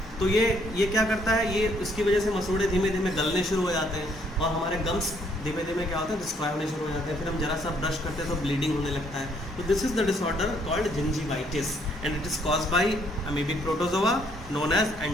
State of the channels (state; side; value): normal; both; correlation 0.67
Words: तो ये क्या करता है? ये इसकी वजह से मसूड़े धीमे धीमे गलने शुरू हो जाते हैं और हमारे गम्स धीमे धीमे क्या होता है? डिस्ट्रॉय होने शुरू हो जाते हैं। फिर हम जरा सा ब्रश करते हैं तो ब्लीडिंग होने लगता है। तो this is the disorder called gingivitis and it is caused by amoebic protozoa known as